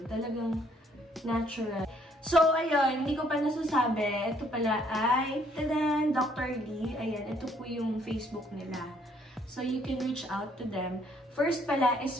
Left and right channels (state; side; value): normal; both; correlation 0.65